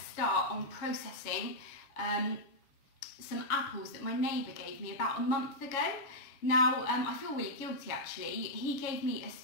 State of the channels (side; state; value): right; late; 7.4 ms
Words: start on processing some apples that my neighbour gave me about a month ago. Now, I feel really guilty actually. He gave me a